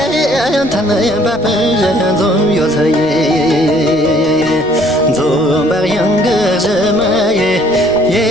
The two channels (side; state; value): left; noise; rumble, 21 dB below the sound